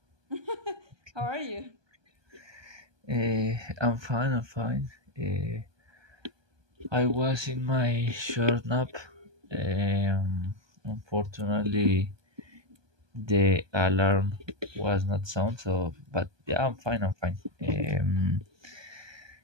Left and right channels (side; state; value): left; late; 1.2 ms